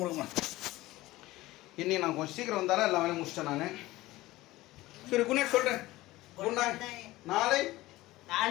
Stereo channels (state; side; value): quieter; right; 18.1 dB